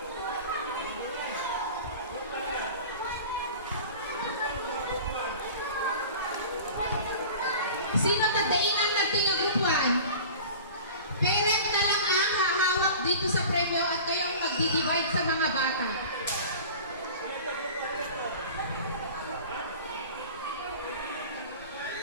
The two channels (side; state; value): both; inverted; correlation -0.39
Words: Sino tadainan natin yung group 1? Parent na lang ang hahawak dito sa premyo at kayo ang magdi-divide sa mga bata.